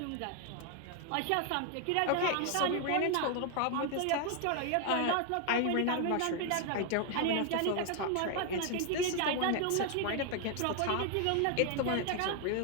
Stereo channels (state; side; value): different; both; correlation 0.00